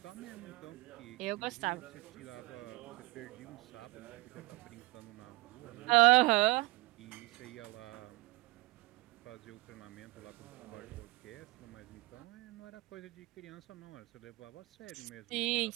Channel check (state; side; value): quieter; left; 21.0 dB